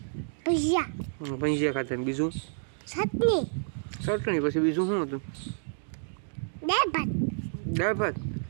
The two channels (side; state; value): left; silent; digital silence